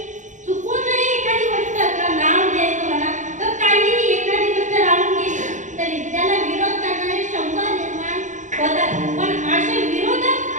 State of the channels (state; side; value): late; left; 0.36 ms